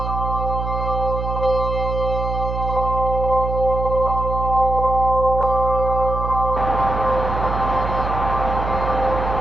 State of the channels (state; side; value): noise; right; hum, 4 dB below the sound